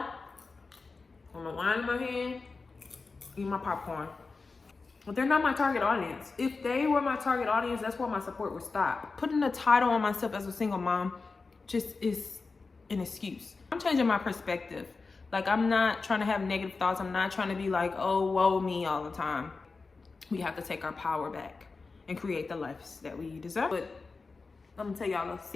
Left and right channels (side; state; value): right; quieter; 4.2 dB